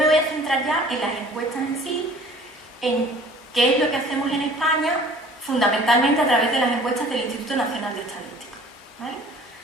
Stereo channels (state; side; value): normal; both; correlation 0.50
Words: voy a centrar ya en las encuestas en sí, en qué es lo que hacemos en España, fundamentalmente a través de las encuestas del Instituto Nacional de Estadística, ¿vale?